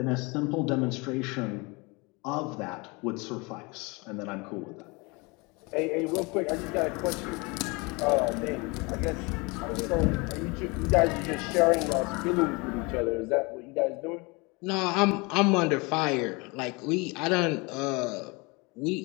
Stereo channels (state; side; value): quieter; right; 27.2 dB